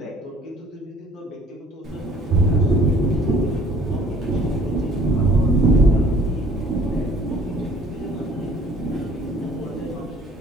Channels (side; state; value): both; normal; correlation 0.55